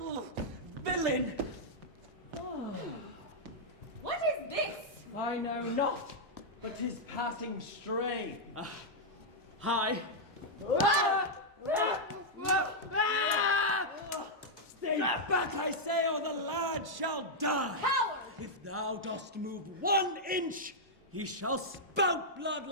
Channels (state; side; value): normal; both; correlation -0.04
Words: Villain! What is this? I know not, but 'tis passing stray. Hi. Stay back, I say, or the lad shall die. Coward! If thou dost move 1 inch, he shall spout blood